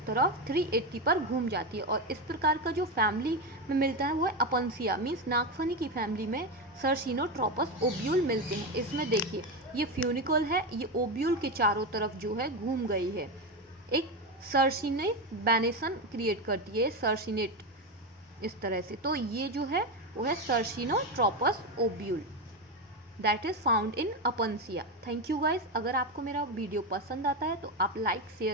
तरफ 380 पर घूम जाती है। और इस प्रकार का जो फैमिली में मिलता है वो है अपनसिया, मीन्स नागफनी की फैमिली में सर्सिनोट्रोपस ओब्यूल मिलते हैं। इसमें देखिए ये फ्यूनिकल है, ये ओब्यूल के चारों तरफ जो है घूम गई है, एक सर्सिनेट बैनेसन क्रिएट करती है, सर्सिनेट इस तरह से। तो ये जो है वो है circinotropous ovule. That is found in Opuntia. Thank you guys. अगर आपको मेरा वीडियो पसंद आता है तो आप लाइक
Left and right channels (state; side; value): normal; both; correlation 0.13